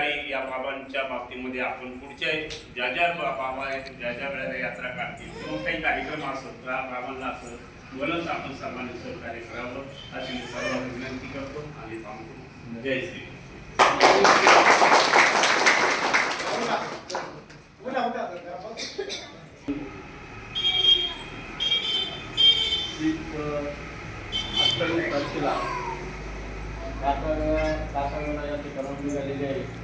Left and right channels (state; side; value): identical; both; correlation 1.00